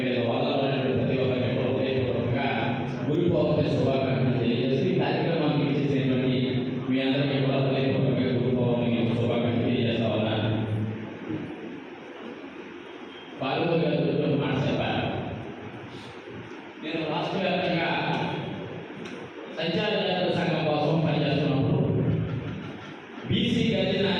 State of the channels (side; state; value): both; identical; correlation 1.00